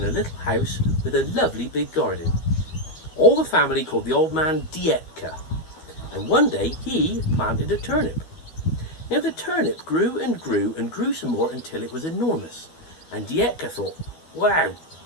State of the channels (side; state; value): right; late; 12 ms